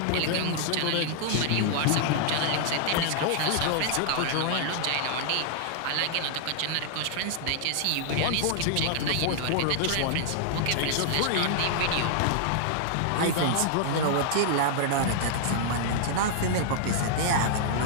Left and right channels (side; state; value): both; different; correlation -0.01